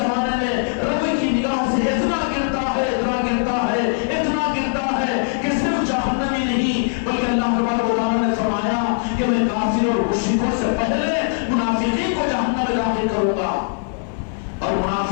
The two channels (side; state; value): right; silent; 65 dB below the other